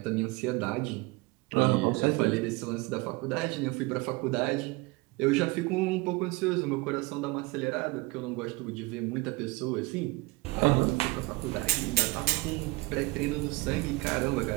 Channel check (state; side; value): quieter; left; 23.5 dB